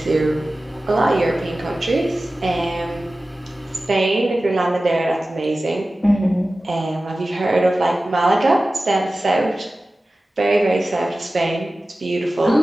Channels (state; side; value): normal; both; correlation 0.96